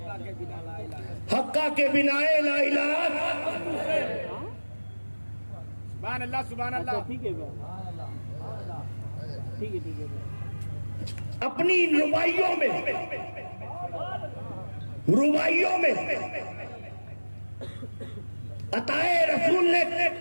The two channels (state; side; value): inverted; both; correlation -1.00